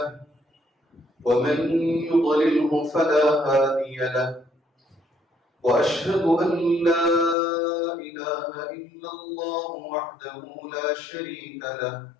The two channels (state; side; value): drops out; right; at 7.4 s